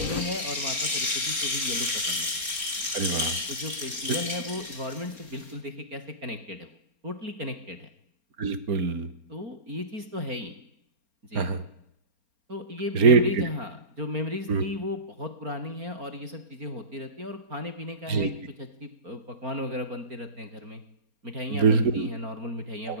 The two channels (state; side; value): late; left; 4.3 ms